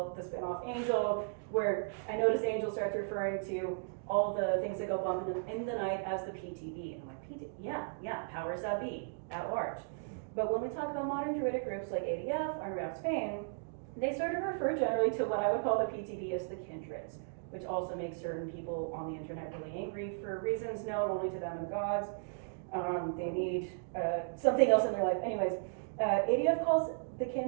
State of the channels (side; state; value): left; silent; digital silence